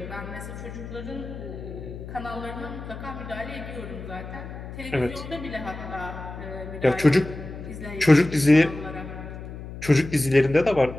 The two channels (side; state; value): left; noise; hum, 11 dB below the sound